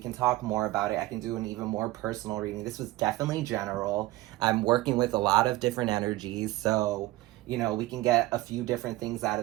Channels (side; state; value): left; quieter; 18.0 dB